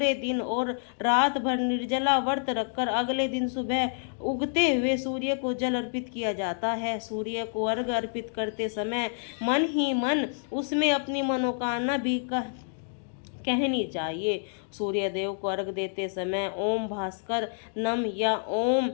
दिन और रात भर निर्जला व्रत रखकर अगले दिन सुबह उगते हुए सूर्य को जल अर्पित किया जाता है। सूर्य को अर्घ अर्पित करते समय मन ही मन उसमें अपनी मनोकामना भी कहनी चाहिए। सूर्य देव को अर्घ देते समय ओम भास्कर नम या ओम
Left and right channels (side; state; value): right; silent; digital silence